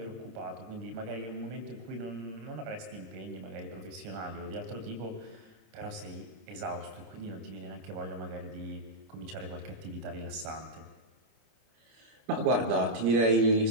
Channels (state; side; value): late; left; 26 ms